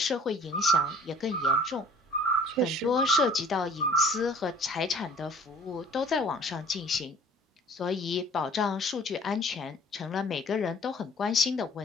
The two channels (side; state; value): both; normal; correlation 0.50